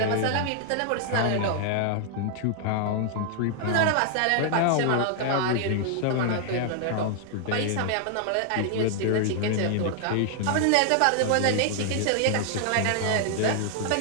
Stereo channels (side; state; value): both; different; correlation 0.00